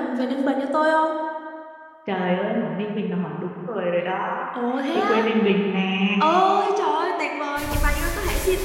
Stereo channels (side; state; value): both; identical; correlation 1.00